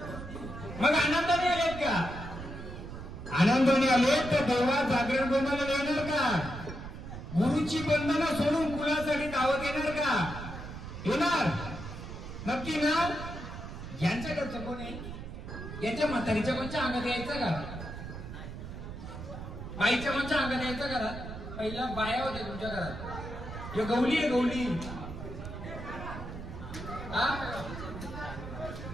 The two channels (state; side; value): noise; right; rumble, 10 dB below the sound